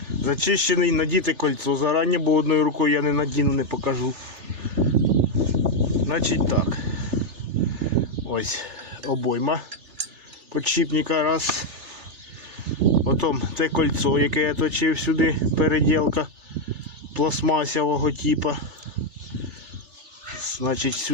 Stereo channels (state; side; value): late; left; 3.4 ms